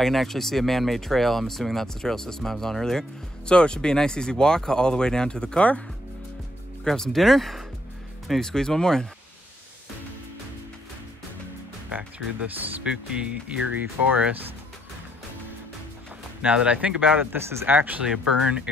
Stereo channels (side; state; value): both; normal; correlation 0.71